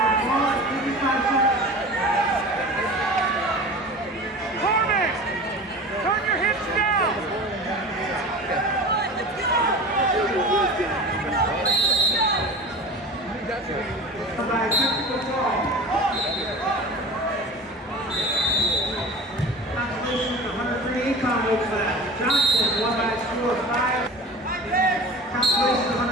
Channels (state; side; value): normal; both; correlation 0.35